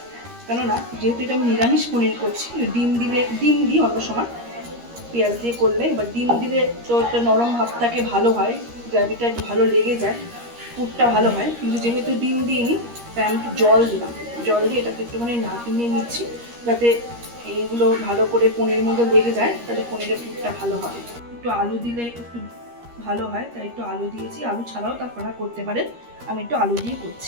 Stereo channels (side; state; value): left; late; 13 ms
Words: কেননা যেহেতু এটা আমি নিরামিষ পনির করছি। ডিম দিই অন্য সময় পেঁয়াজ দিয়ে করলে, এবার ডিম দিলে তো একটা নরম ভাবটাকে ভালো হয়, গ্রেভিটা একটু ভালো লেগে যায়, পুরটা ভালো হয়। কিন্তু যেহেতু ডিম দিইনি তাই আমি একটু জল দিলাম। জল দিয়ে এটাকে একটুখানি নাড়িয়ে নিচ্ছি যাতে এইগুলো ভালো করে পনিরের মধ্যে লেগে যায়, তাহলে পনিরের পুরটা ভালো হবে। একটু আলু দিলে একটু ভালো হয়, তাই একটু আলু দিয়েছি। আলু ছাড়াও আপনারা করতে পারেন, আমি একটু আলু দিয়ে